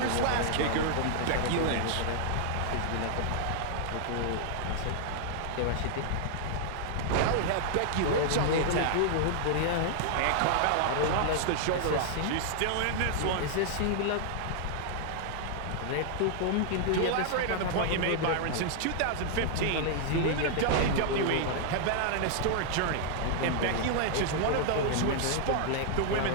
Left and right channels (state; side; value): different; both; correlation -0.01